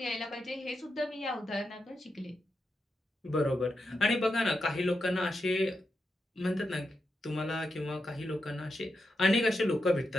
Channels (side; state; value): both; normal; correlation 0.86